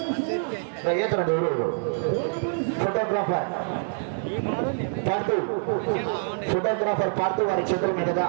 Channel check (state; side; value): silent; left; 61 dB below the other